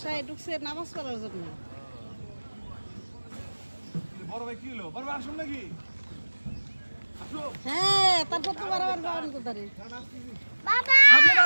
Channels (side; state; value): both; inverted; correlation -1.00